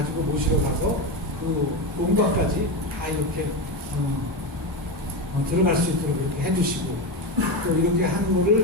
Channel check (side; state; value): both; normal; correlation 0.15